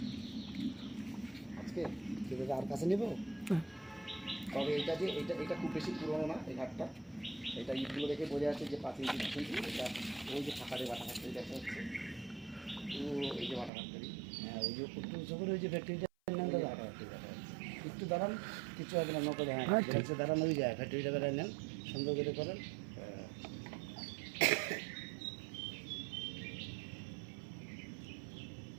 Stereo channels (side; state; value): left; drops out; at 13.7 s